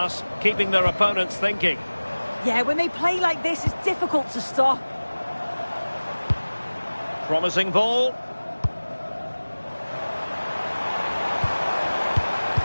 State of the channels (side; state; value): both; inverted; correlation -1.00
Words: keeping their opponents thinking. Yeah, when they play like this, it's difficult to stop. Promising ball.